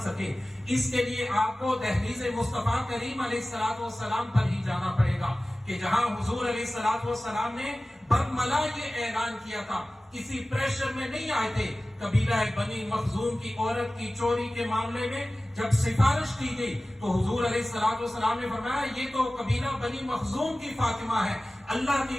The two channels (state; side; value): normal; both; correlation 0.97